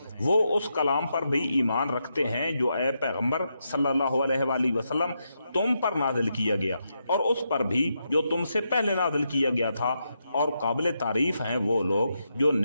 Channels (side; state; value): both; inverted; correlation -0.83